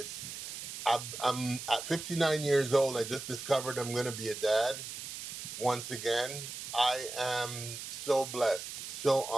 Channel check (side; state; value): right; noise; hiss, 8 dB below the sound